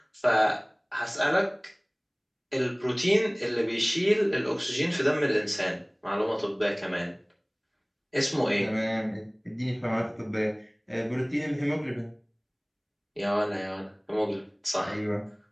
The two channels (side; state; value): both; identical; correlation 1.00